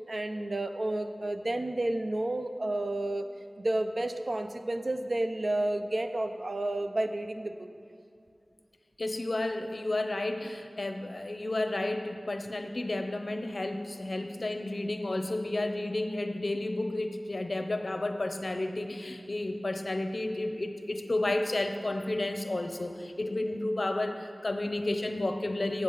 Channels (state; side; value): normal; both; correlation 0.97